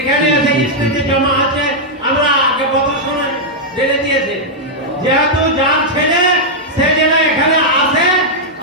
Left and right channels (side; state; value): both; normal; correlation -0.05